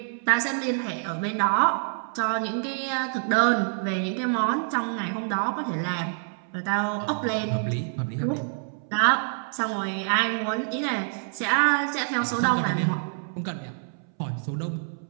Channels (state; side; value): silent; left; 60 dB below the other